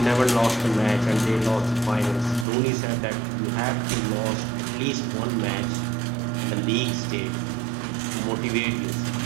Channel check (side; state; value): left; drops out; at 2.5 s